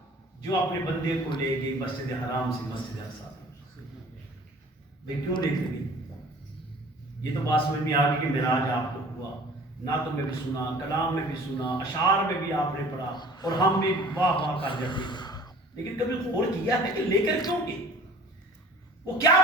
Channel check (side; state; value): both; normal; correlation 0.48